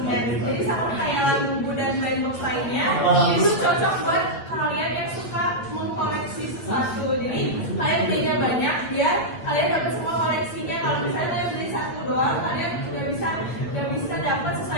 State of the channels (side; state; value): right; late; 8.8 ms